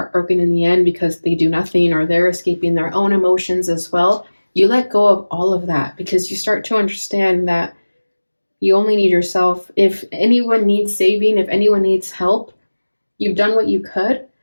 in the end because they do nothing or they're escaping their own emotions as well. You let go of all of that because you start to understand that you only need yourself. If anyone needs saving, if anyone needs help, you've done what you could,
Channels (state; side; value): inverted; both; correlation -1.00